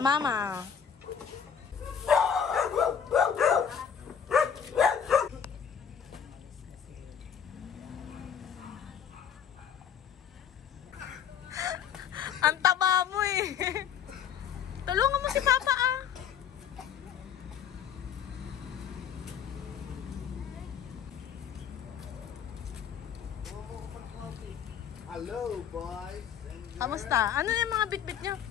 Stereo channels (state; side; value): quieter; right; 7.9 dB